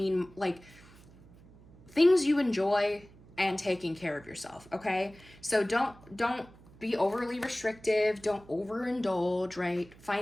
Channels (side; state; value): right; noise; hum, 23 dB below the sound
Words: like things you enjoy and taking care of yourself, okay? So don't be overly restrictive, don't overindulge, right?